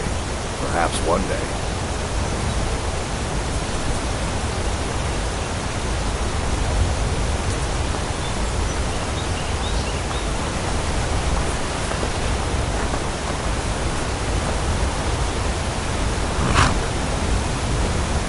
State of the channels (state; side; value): identical; both; correlation 1.00